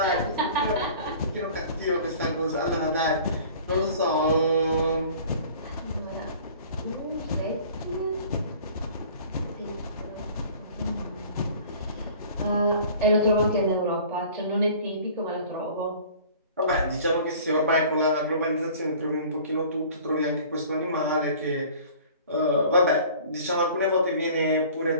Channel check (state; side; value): inverted; both; correlation -0.47